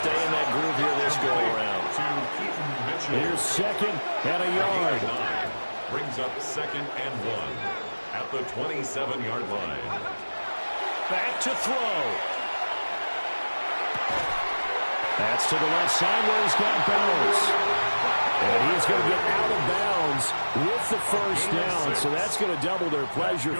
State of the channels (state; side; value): inverted; both; correlation -1.00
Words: in that groove here this go-around. Here's second and a yard. Brings up second and 1 at the 27-yard line. Back to throw. That's to the left side where he's got balance. And he's going to get out of bounds with the first down. So that's going to double their pleasure